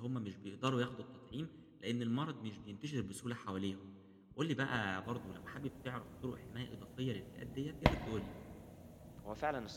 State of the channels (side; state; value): both; identical; correlation 1.00